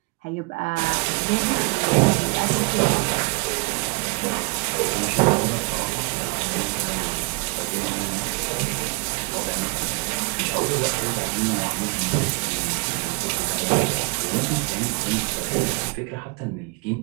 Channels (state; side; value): quieter; left; 30.4 dB